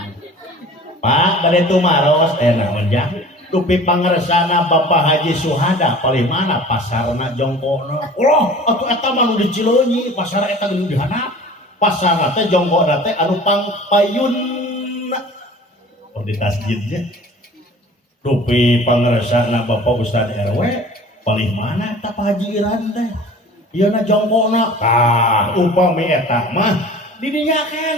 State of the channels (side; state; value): both; normal; correlation 0.44